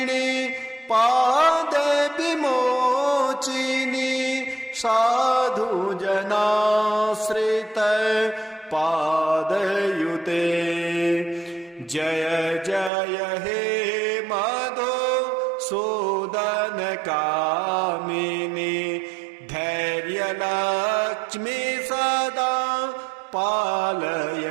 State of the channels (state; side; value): drops out; left; at 12.9 s